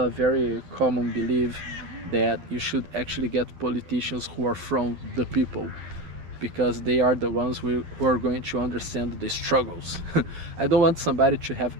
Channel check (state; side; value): late; left; 11 ms